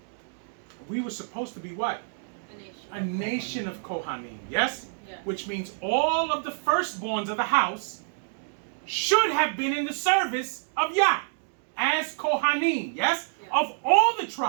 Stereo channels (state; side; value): silent; left; digital silence